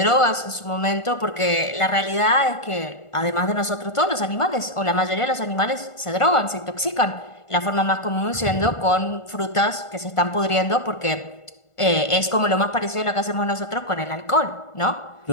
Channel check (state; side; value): late; right; 1.5 ms